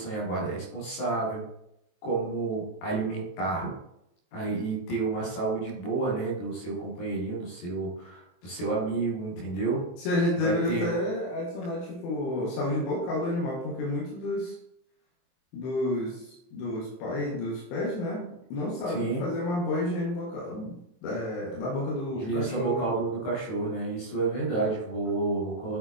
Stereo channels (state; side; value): late; right; 23 ms